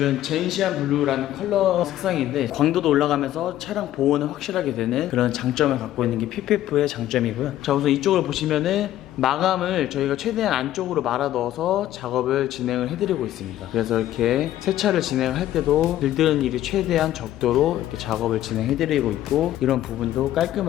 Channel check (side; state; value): right; quieter; 13.2 dB